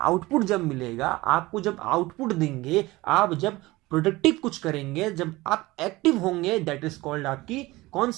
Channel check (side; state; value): left; quieter; 20.1 dB